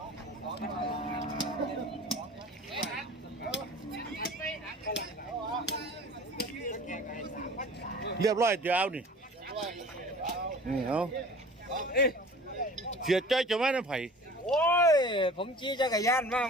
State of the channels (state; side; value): normal; both; correlation 0.43